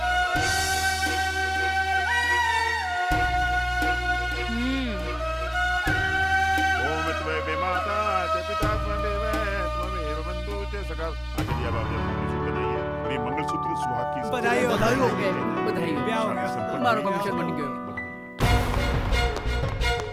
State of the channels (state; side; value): identical; both; correlation 1.00